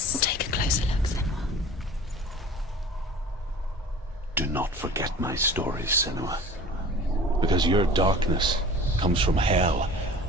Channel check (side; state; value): both; normal; correlation 0.42